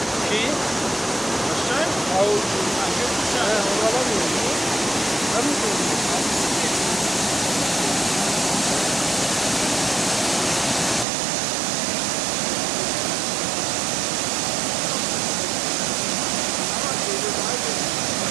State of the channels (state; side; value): drops out; left; at 11.1 s